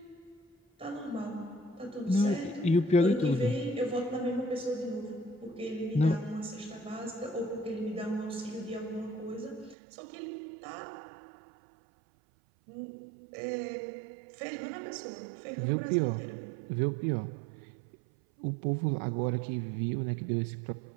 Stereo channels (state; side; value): drops out; left; at 9.8 s